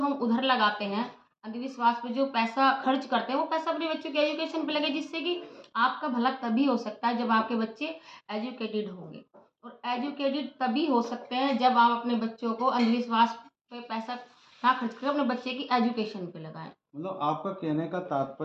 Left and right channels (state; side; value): identical; both; correlation 1.00